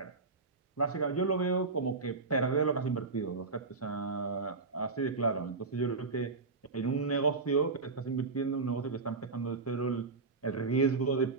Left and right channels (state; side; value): quieter; left; 4.2 dB